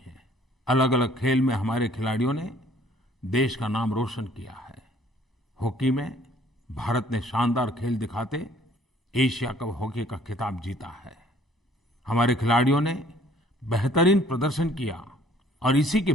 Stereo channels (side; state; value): both; normal; correlation 0.58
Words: हैं। अलग अलग खेल में हमारे खिलाड़ियों ने देश का नाम रोशन किया है। हॉकी में भारत ने शानदार खेल दिखाते एशिया कप हॉकी का खिताब जीता है। हमारे खिलाड़ियों ने बेहतरीन प्रदर्शन किया और इसी के